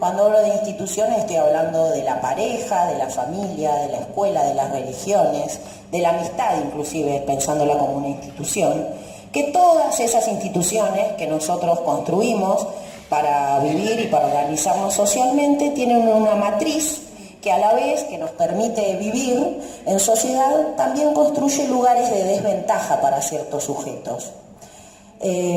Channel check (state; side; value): identical; both; correlation 1.00